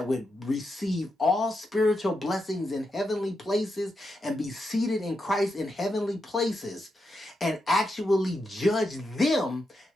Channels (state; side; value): normal; both; correlation 0.85